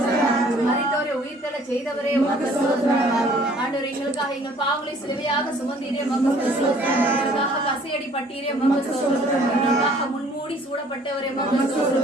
அப்பா. மரித்தோரை உயிர்த்தெழ செய்தவரே உமக்கு ஸ்தோத்திரம் அப்பா. ஆண்டவரே, எங்களுக்காக எங்கள் பாவங்களை சிலுவையாக சுமந்தீரே உமக்கு ஸ்தோத்திரம். எங்களுக்காக கசையடி பட்டீரே உமக்கு ஸ்தோத்திரம். எங்களுக்காக முன்மூடி சூடப்பட்டவரே உமக்கு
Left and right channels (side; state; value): both; normal; correlation 0.56